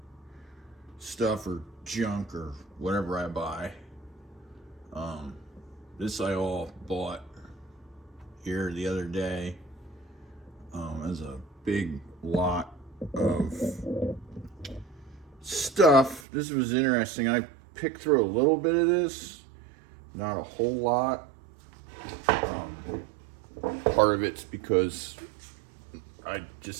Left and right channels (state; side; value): drops out; left; at 16.2 s